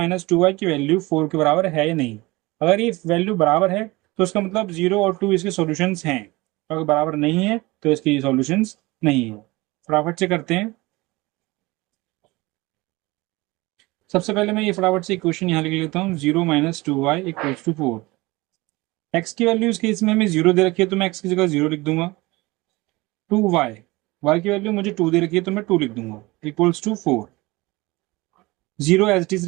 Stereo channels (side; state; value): left; quieter; 22.0 dB